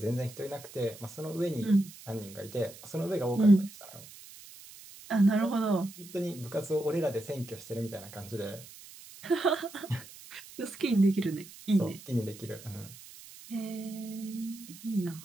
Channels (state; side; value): noise; right; hiss, 18 dB below the sound